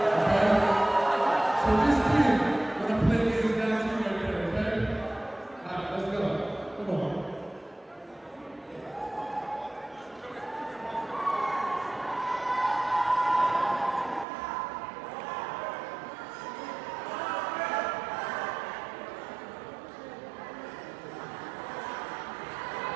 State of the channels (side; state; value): left; drops out; at 14.2 s